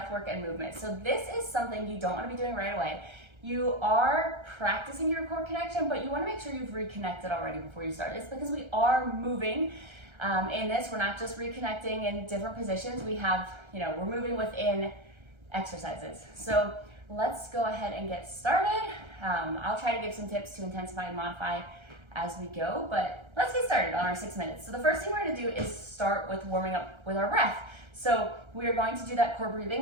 and movement. So this is something you don't want to be doing right away. You are practicing your core connection, but you want to make sure you've reconnected already before you start. It's because we are moving in this. We're not just reconnecting in different positions. We have, we're moving within exercises. So let's go ahead and get started. I'll try to give some tips to intensify and modify as we go, but let's get started on our 6 minutes. So the first thing we're going to do is start with warming up with our breath. So we are going to do that core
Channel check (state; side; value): late; left; 1.3 ms